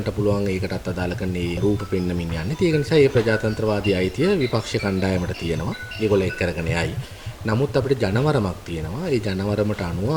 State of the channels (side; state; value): both; identical; correlation 1.00